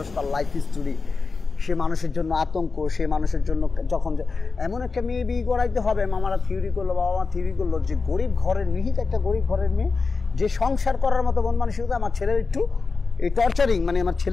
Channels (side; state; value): right; quieter; 4.3 dB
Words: তার লাইফ হিস্টোরি, সে মানুষের জন্য আতঙ্ক, সে মানুষের জন্য যখন এমন একটা মেয়ে বিয়ে করাইতে হবে। মামারা থিওরি করলো, বাবা মা থিওরি করলো যে গরিব ঘরের নিহিত একটা গরিব ঘরের মেয়ে যে সংসার করার মতো মন মানসিকতা, আমার ছেলের একটু এই টর্চারিং, মানে আমার